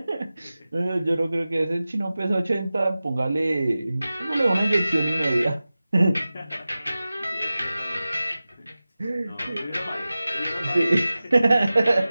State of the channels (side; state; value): both; inverted; correlation -0.96